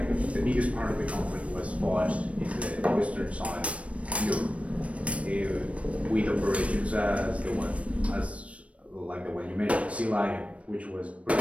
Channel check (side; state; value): left; late; 0.064 ms